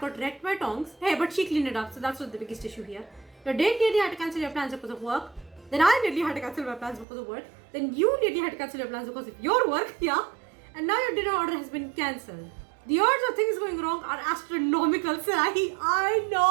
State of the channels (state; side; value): drops out; left; at 7.1 s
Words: got wrecked by tongs? Hey, but she cleaned it up, so that's not the biggest issue here. Your date nearly had to cancel your plans because of work. Then I nearly had to cancel my plans because of work. Then you nearly had to cancel your plans because of your work, yeah? And now your dinner order has been cancelled. The odds of things going wrong are astronomical, Sarahi. I